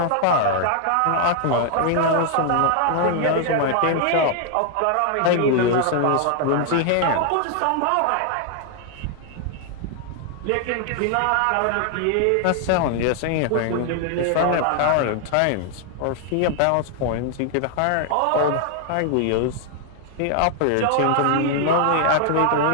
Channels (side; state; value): both; different; correlation 0.00